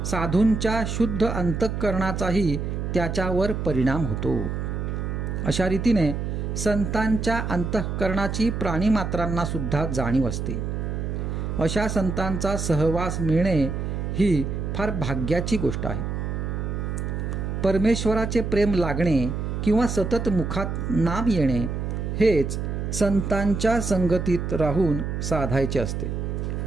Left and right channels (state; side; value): noise; right; hum, 3 dB below the sound